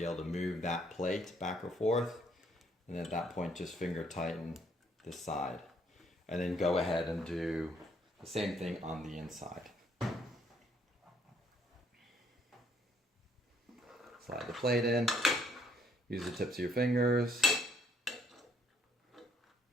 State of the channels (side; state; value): both; normal; correlation 0.67